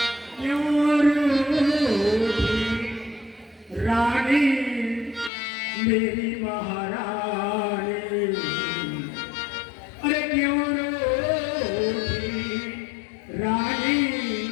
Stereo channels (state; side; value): drops out; right; at 5.3 s